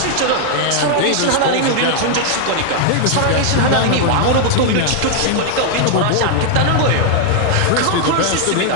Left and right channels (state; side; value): different; both; correlation 0.00